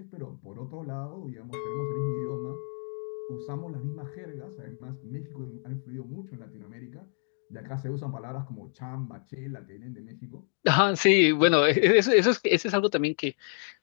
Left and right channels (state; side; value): silent; right; 59 dB below the other